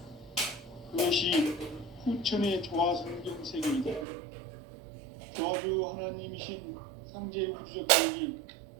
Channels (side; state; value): left; drops out; at 4.0 s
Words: 그것이 후천의 조화성경 세계이다. 조화주 하나님이신 상제 우주적 계획이